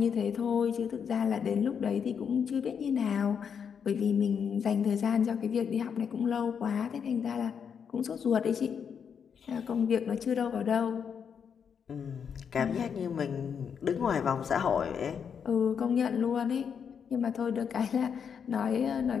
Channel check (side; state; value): right; quieter; 7.1 dB